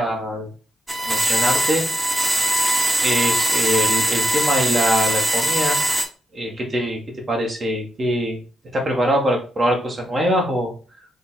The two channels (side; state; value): both; normal; correlation 0.83